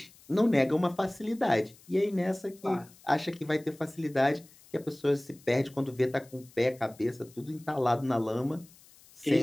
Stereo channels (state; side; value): noise; left; hiss, 25 dB below the sound